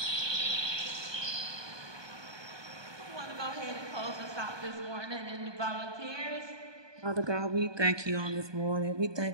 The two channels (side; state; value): left; late; 1.2 ms